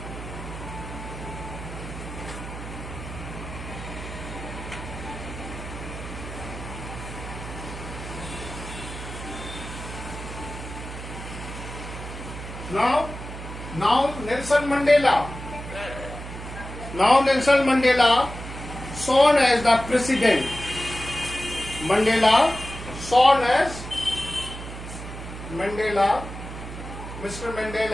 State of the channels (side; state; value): right; noise; hum, 10 dB below the sound